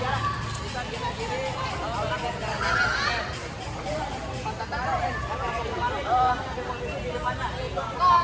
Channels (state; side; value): identical; both; correlation 1.00